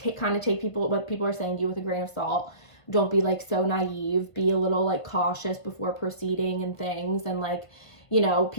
people, what people are saying to you with a grain of salt, don't be like so naive, be a little like cautious before proceeding and things, and like, you know,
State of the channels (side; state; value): right; late; 1.5 ms